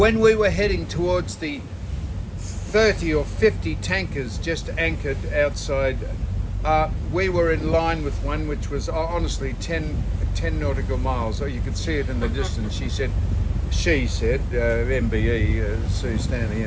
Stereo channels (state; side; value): identical; both; correlation 1.00